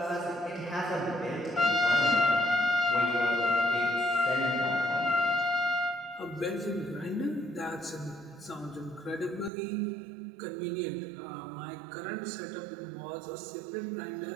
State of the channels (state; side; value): drops out; left; at 9.5 s